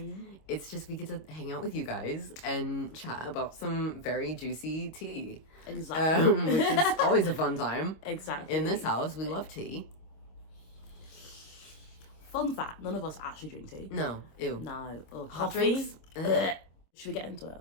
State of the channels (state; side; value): late; right; 25 ms